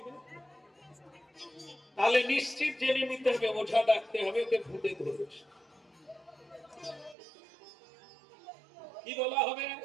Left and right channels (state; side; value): drops out; left; at 7.2 s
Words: তাহলে নিশ্চিত জেনে নিতে হবে ওঝা ডাকতে হবে, ওকে ভূতে ধরেছে। কি বলা হবে?